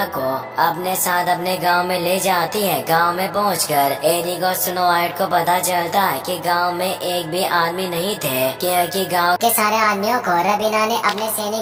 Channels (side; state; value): both; identical; correlation 1.00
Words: को अपने साथ अपने गांव में ले जाती है। गांव में पहुंचकर एरिक और स्नो वाइट को पता चलता है कि गांव में एक भी आदमी नहीं थे, क्योंकि गांव के सारे आदमियों को रबीना ने अपने